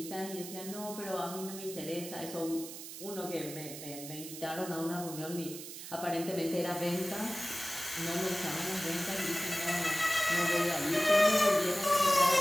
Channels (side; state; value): right; noise; hiss, 11 dB below the sound